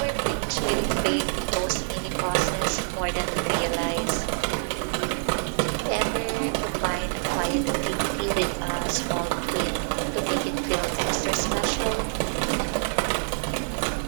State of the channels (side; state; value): left; silent; digital silence